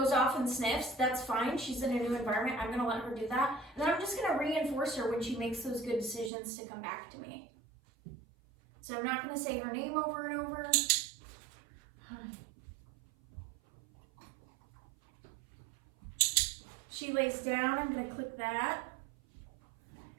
off and sniffs, that's fine. She's in a new environment. I'm going to let her do that. And then I'm just going to reinforce her when she makes those good decisions to come back to me. So I'm not going to say her name over and over. She lays down, I'm going to click that.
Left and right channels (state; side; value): drops out; left; at 6.3 s